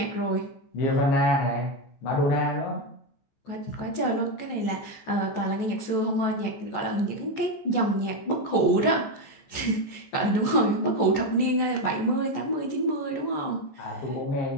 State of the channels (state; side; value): late; right; 14 ms